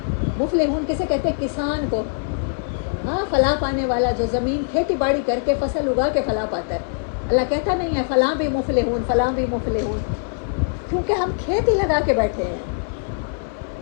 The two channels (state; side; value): silent; right; digital silence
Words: مفلحون کسے کہتے ہیں؟ کسان کو، ہاں فلاح پانے والا، جو زمین کھیتی باڑی کر کے فصل اگا کے فلاح پاتا ہے۔ اللہ کہتا نہیں ہے فلاں بھی مفلحون، فلاں بھی مفلحون، کیونکہ ہم کھیتی لگا کے بیٹھے ہیں۔